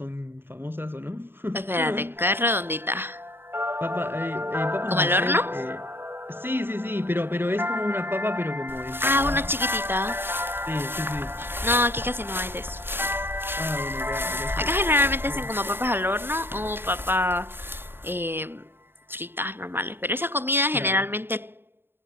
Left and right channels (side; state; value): left; late; 0.11 ms